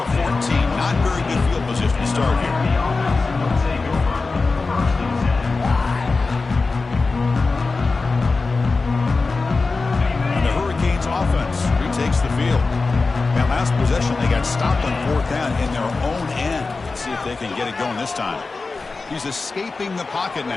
14. Not very good field position to start here. And the Hurricanes offense retakes the field. That last possession, they got stopped on 4th down in their own end. Let's see if they can get it going this time. He's escaping the pocket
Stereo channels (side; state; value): right; quieter; 3.9 dB